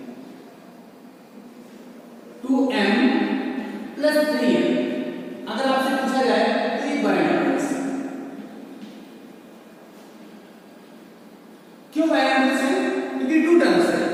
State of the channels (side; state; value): both; identical; correlation 1.00